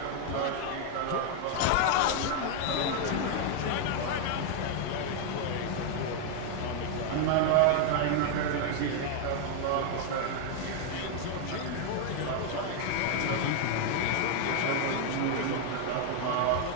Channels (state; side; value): different; both; correlation 0.00